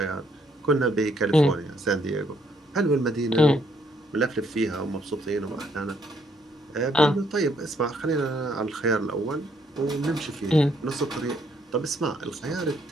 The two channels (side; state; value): both; normal; correlation 0.70